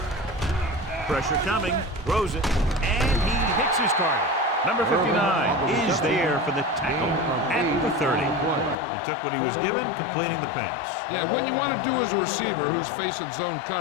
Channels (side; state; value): right; drops out; at 8.8 s